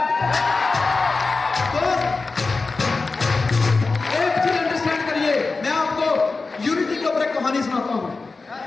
दोस्त, एक चीज अंडरस्टैंड करिए, मैं आपको यूनिटी के ऊपर एक कहानी सुनाता हूं,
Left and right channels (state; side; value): quieter; right; 3.9 dB